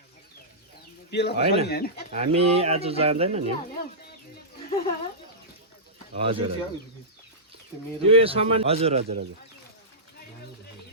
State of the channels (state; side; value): normal; both; correlation -0.15